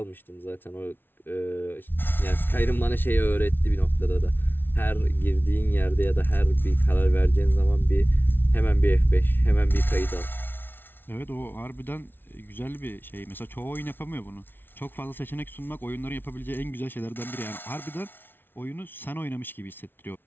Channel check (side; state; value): right; late; 0.10 ms